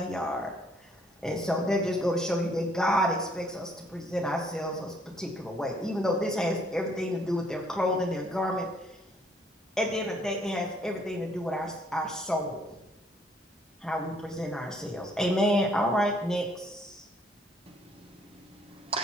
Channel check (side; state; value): both; normal; correlation 0.65